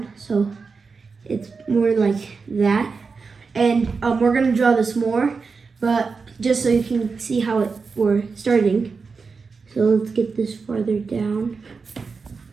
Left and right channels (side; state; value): left; quieter; 4.8 dB